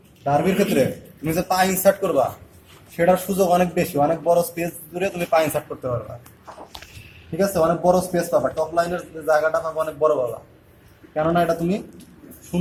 ডার্বির ক্ষেত্রে তুমি যে পা ইনসার্ট করবা সেটার সুযোগ অনেক বেশি, অনেক বড় স্পেস জুড়ে তুমি পা ইনসার্ট করতে পারবা। ঠিক আছে, অনেক বড় স্পেস পাবা, টপ লাইনের জায়গাটা পাবা অনেক বড় পাবা। কেননা এটা তুমি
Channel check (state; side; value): identical; both; correlation 1.00